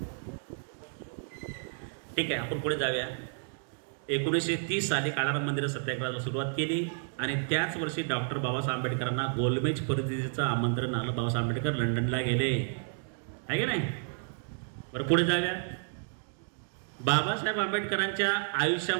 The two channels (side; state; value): left; silent; 57 dB below the other